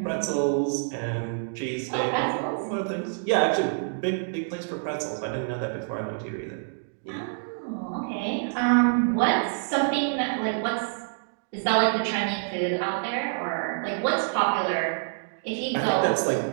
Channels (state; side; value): silent; left; digital silence